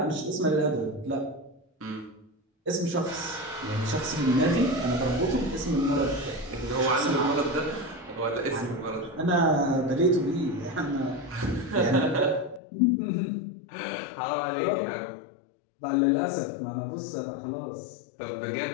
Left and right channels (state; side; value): drops out; right; at 12.6 s